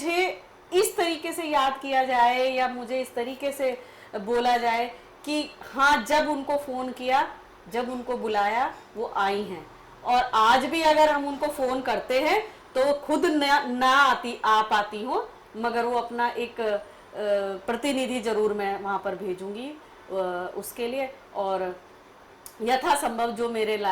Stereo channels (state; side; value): identical; both; correlation 1.00